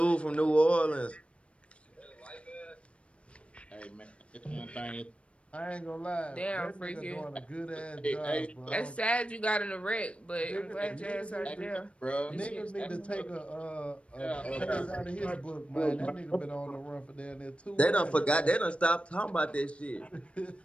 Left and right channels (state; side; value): late; right; 0.061 ms